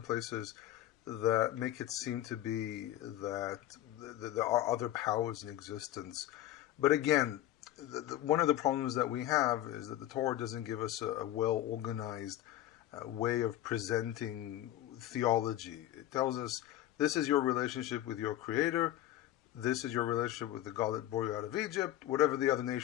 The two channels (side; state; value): right; quieter; 13.7 dB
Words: places that make it seem to be that there are other powers in existence. But again, one of the problems that we have is that the Torah doesn't give us a well-organized way of presenting theology. It tells us this is your relationship with your Creator, this is your relationship with the God that brought you out of Egypt. Whatever the other